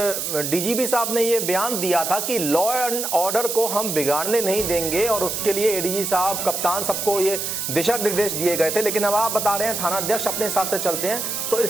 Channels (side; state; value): right; noise; hiss, 3 dB below the sound